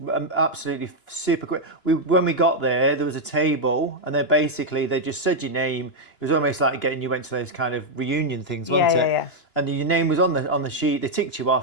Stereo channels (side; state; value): right; late; 2.9 ms